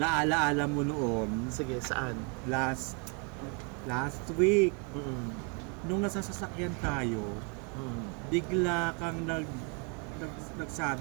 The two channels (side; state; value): left; quieter; 35.6 dB